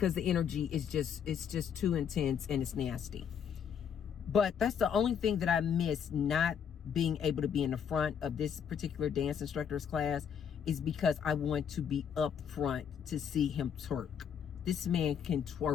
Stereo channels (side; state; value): right; quieter; 7.8 dB